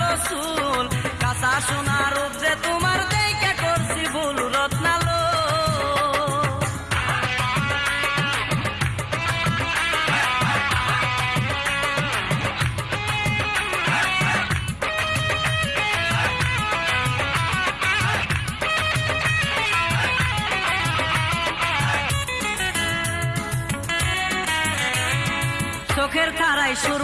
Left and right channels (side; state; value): both; identical; correlation 1.00